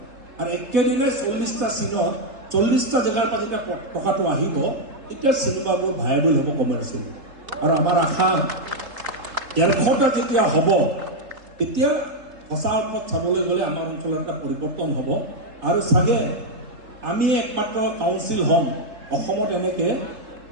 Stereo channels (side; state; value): left; late; 3.7 ms